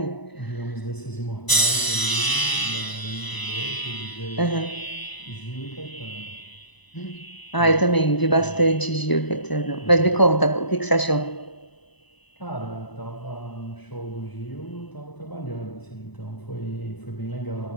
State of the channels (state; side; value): late; right; 1.0 ms